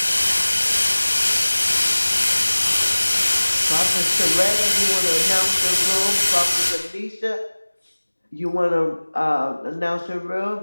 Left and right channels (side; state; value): both; inverted; correlation -1.00